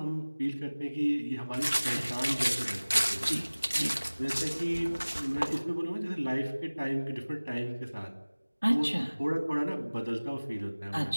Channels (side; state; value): both; inverted; correlation -1.00